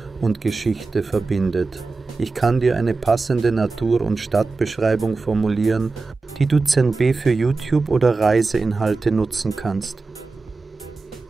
und Geschichte verbindet. Ich kann dir eine passende Natur- und Stadtbeschreibung formulieren, die du ZNB für YouTube oder Reiseinhalte nutzen kannst.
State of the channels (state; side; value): quieter; left; 4.0 dB